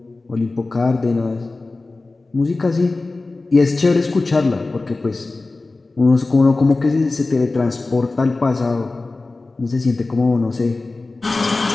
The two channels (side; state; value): right; quieter; 3.4 dB